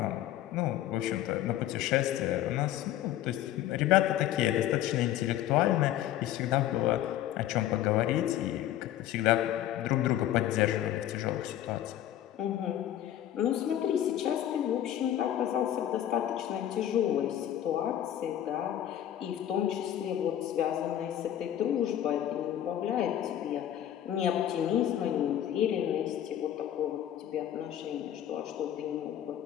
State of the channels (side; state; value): right; quieter; 11.8 dB